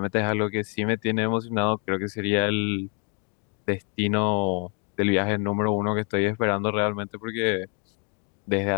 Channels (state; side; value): quieter; right; 36.3 dB